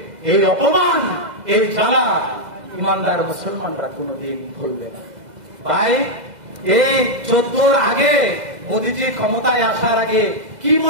এই অপমান, এই জ্বালা ইমানদার মুসলমানরা কোনদিন ভুলবে না। ভাই, এই 14 আগে মোদীজি ক্ষমতায় আসার আগে কি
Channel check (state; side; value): late; left; 2.0 ms